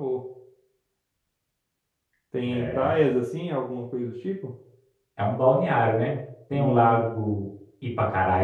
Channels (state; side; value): identical; both; correlation 1.00